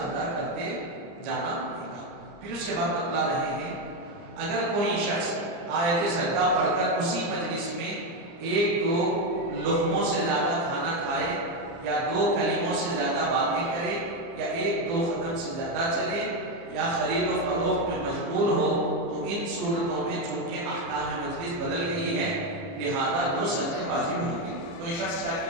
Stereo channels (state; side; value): late; left; 29 ms